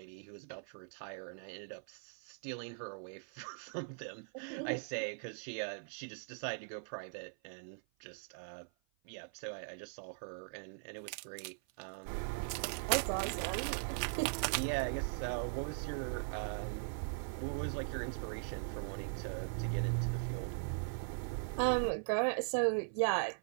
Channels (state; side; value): silent; left; 51 dB below the other